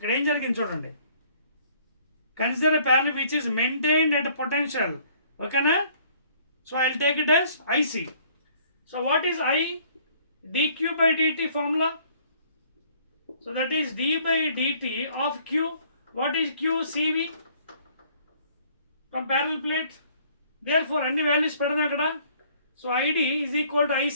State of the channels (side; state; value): both; inverted; correlation -0.59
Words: ఏం జరిగింది చూడండి. Consider a parallel which is maintained at potential. ఓకేనా? So I will take it as IC. So what is I? dQ/dt formula. So that is d/dt of Q. What is Q? CV from parallel plate. therefore అన్ని values పెడదాం అక్కడ. So ID is equal to